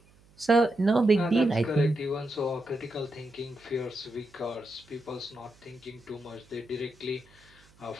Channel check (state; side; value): noise; right; hum, 29 dB below the sound